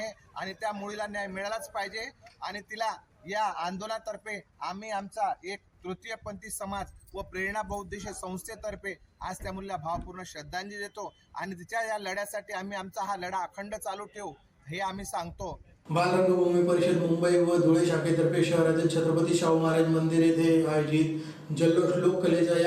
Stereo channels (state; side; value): identical; both; correlation 1.00